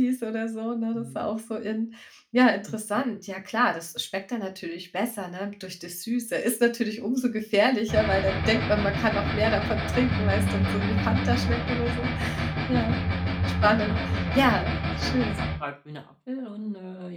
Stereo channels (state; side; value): identical; both; correlation 1.00